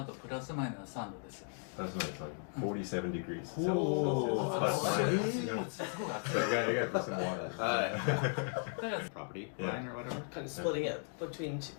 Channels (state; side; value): silent; right; 53 dB below the other